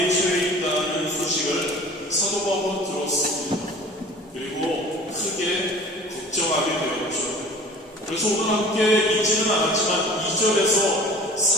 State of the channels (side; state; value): both; normal; correlation 0.44